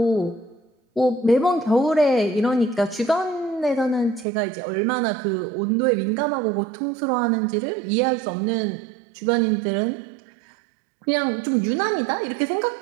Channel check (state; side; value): drops out; left; at 4.2 s